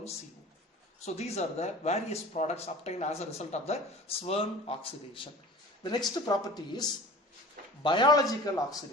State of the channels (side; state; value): both; normal; correlation 0.40